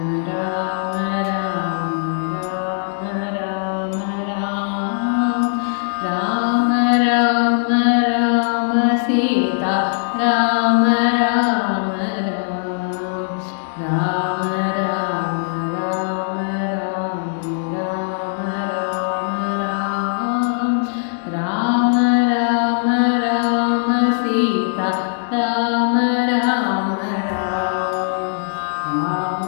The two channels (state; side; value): silent; right; digital silence